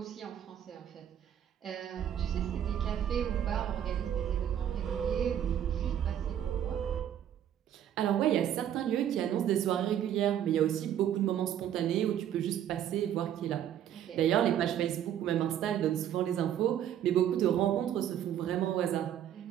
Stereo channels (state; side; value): quieter; left; 10.3 dB